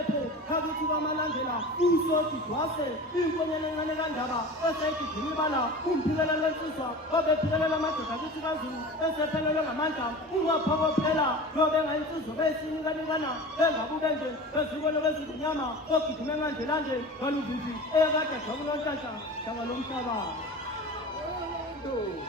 khakithi bamalandela usoti dwase inkonyane encane kandaba eseyigidini ibala umphikelela lwensizwa obephikelela amadoda akithi kaZulu esephelelwe ngamandla ungaphokophela lobe ngayinsizwa beyisinikanekana bengabubenje bezikolo bezinyama ogidime ngandelande ngaluvivi eyakade jakulonhlanhla hlanga lomhlaba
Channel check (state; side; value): normal; both; correlation 0.35